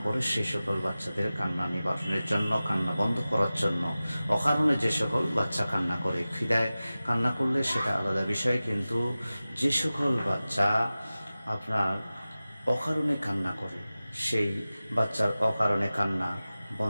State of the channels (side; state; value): both; inverted; correlation -0.96